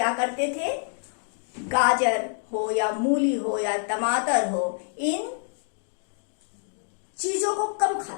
करते थे, गाजर हो या मूली हो या टमाटर हो, इन चीजों को कम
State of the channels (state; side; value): silent; right; digital silence